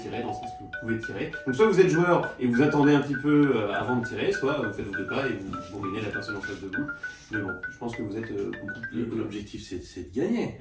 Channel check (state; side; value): identical; both; correlation 1.00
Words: dans le sens que vous pouvez tirer. Donc soit vous êtes joueur et vous attendez un petit peu avant de tirer, soit vous faites vos deux pas et vous bourrinez la personne en face de vous. Mais bon, je pense que vous êtes beaucoup plus... L'objectif, c'est de gagner.